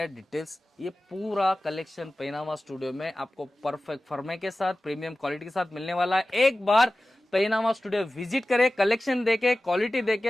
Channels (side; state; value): both; normal; correlation 0.96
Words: डिटेल्स। ये पूरा कलेक्शन पहनावा स्टूडियो में आपको परफेक्ट फर्मे के साथ, प्रीमियम क्वालिटी के साथ मिलने वाला है। एक बार पहनावा स्टूडियो विजिट करें, कलेक्शन देके, क्वालिटी